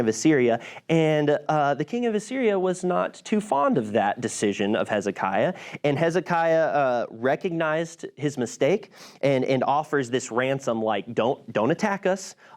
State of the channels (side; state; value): both; identical; correlation 1.00